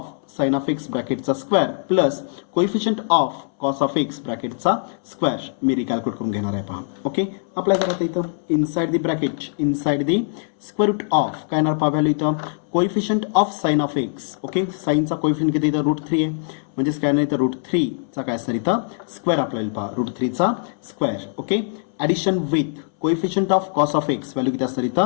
sine of x ब्रॅकेटचा square plus coefficient of cos of x ब्रॅकेटचा स्क्वेअर मी रिकॅल्क्युलेट करून घेणार आहे. पहा ओके अप्लाय करा इथं inside the bracket inside the square root of काय येणार पहा व्हॅल्यू इथं coefficient of sine of x. Okay साइनचा कोइफिशियंट किती इथं √3 आहे म्हणजेच काय नाही इथं √3चा काय असणार इथं स्क्वेअर आपल्याला पहा √3चा square. Okay addition with coefficient of cos of x value किती असणार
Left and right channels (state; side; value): silent; right; 64 dB below the other